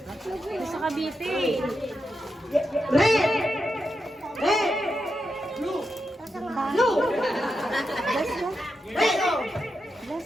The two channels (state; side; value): normal; both; correlation 0.87